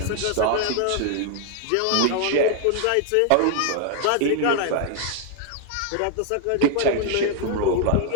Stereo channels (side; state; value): both; different; correlation 0.00